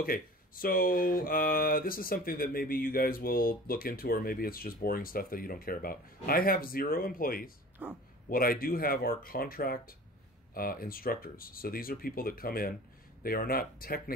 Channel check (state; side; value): normal; both; correlation 0.42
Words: So this is something that maybe you guys will look into, or maybe it's just boring stuff that you don't care about. I have 0 employees. Huh. What I do have are contract instructors. So these are people that come in. They are not